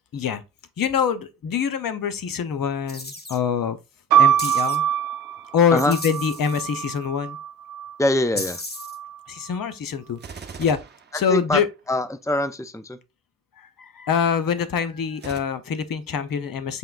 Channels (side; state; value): both; normal; correlation 0.33